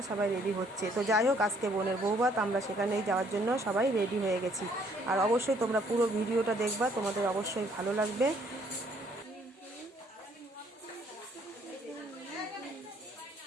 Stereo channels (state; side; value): normal; both; correlation 0.64